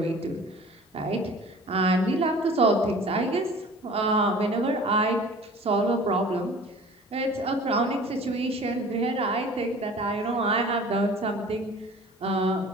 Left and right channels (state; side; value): normal; both; correlation 0.45